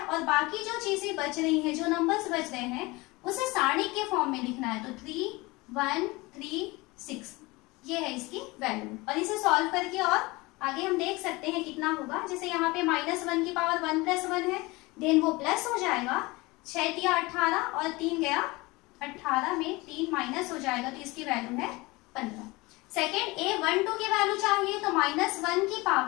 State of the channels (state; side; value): quieter; right; 23.0 dB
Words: बाकी जो चीजें बच रही हैं, जो नंबर्स बच रहे हैं, उसे सारणिक के फॉर्म में लिखना है। तो 3 1 3 6 ये है इसकी वैल्यू। और इसे सॉल्व करके और आगे हम देख सकते हैं कितना होगा। जैसे यहाँ पे -1 की पावर 1 + 1 है, देन वो प्लस हो जाएगा, 6 × 18 और 3 गया 18 में 3 माइनस हो जाएगा, तो इसकी वैल्यू है 15। सेकेंड A12 की वैल्यू चाहिए तो -1 की